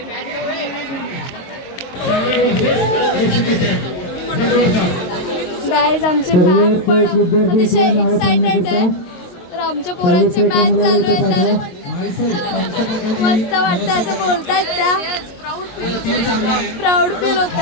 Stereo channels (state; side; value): late; right; 22 ms